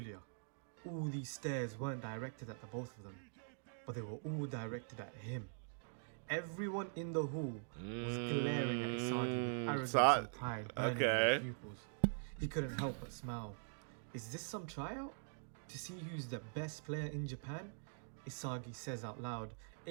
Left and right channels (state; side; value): silent; left; digital silence